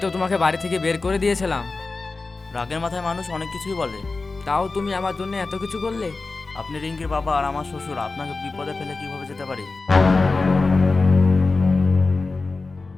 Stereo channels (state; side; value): quieter; right; 3.7 dB